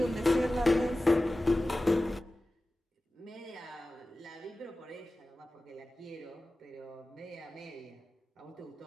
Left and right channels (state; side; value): normal; both; correlation 0.96